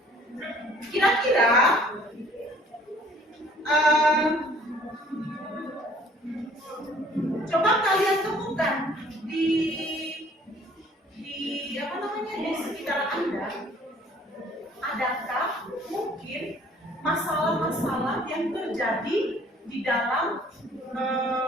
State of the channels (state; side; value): normal; both; correlation 0.56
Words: kira-kira coba kalian temukan di apa namanya di sekitar Anda, adakah mungkin masalah-masalah yang terjadi di dalam